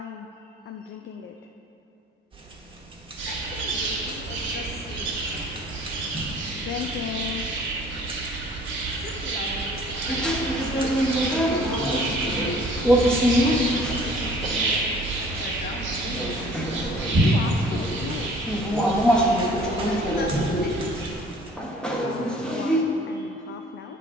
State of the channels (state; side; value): normal; both; correlation 0.52